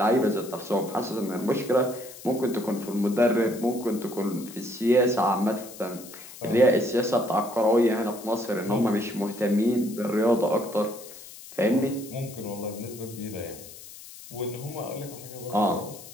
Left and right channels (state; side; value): noise; left; hiss, 16 dB below the sound